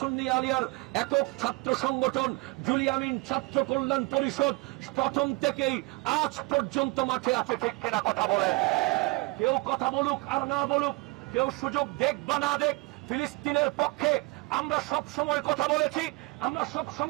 আলিয়ার একক ছাত্র সংগঠন জুলিয়ামিন ছাত্র কল্যাণ পরিষদ প্রথম থেকেই আজ পর্যন্ত মাঠে আছে। ঠিক কিনা কথা বলেন? কেউ কথা বলুক আর না বলুক, কেউ সুযোগ দেখ বা না দেখ, ফিলিস্তিনের পক্ষে আমরা সব সময় কথা বলেছি, আমরা সব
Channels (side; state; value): left; quieter; 24.9 dB